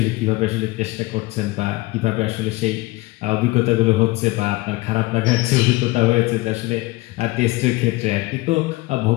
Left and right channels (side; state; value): right; quieter; 20.6 dB